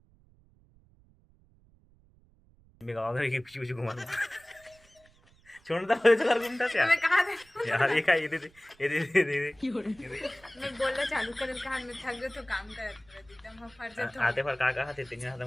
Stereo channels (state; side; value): noise; right; rumble, 29 dB below the sound